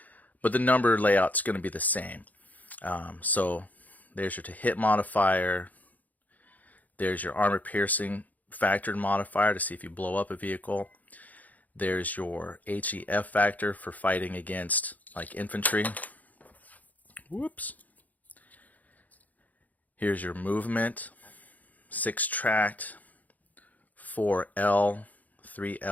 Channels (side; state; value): right; late; 0.079 ms